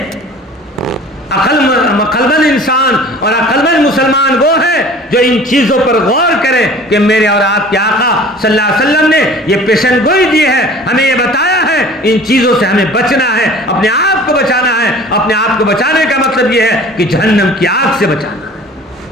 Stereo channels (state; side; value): normal; both; correlation 0.45